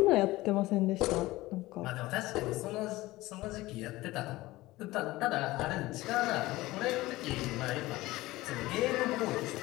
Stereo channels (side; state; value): right; quieter; 18.7 dB